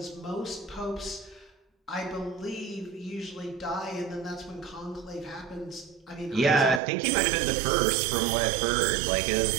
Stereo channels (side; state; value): left; drops out; at 6.8 s